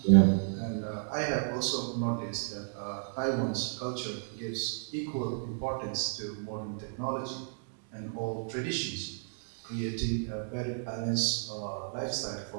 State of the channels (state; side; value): silent; left; digital silence